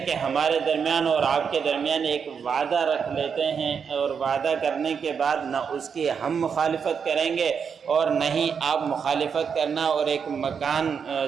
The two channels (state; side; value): quieter; left; 6.6 dB